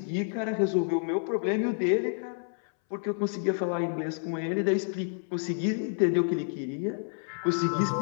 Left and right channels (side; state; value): right; silent; 59 dB below the other